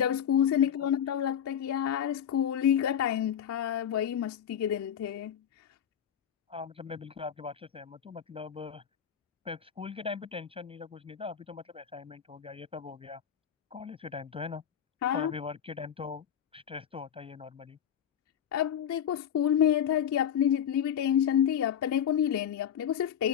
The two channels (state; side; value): quieter; right; 9.1 dB